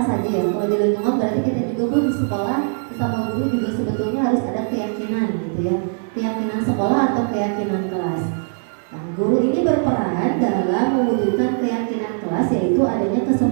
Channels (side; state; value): left; silent; digital silence